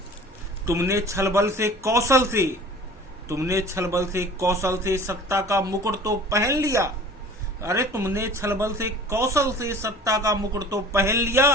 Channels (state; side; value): normal; both; correlation 0.44